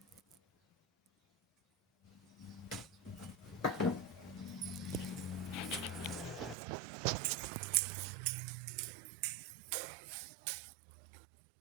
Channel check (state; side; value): drops out; left; at 6.6 s